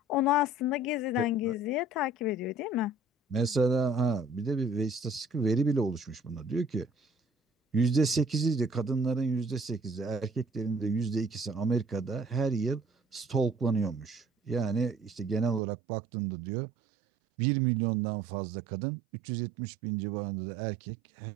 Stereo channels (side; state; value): left; drops out; at 15.6 s